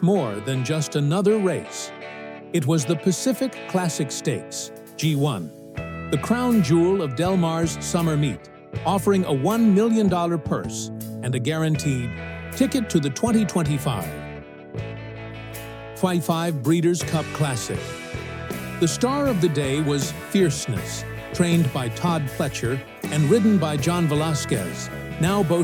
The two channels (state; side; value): identical; both; correlation 1.00